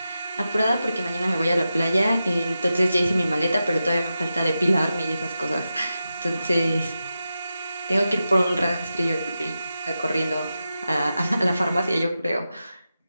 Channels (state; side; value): inverted; both; correlation -0.91